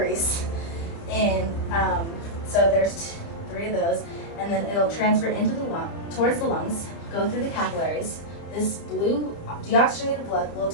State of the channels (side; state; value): right; late; 30 ms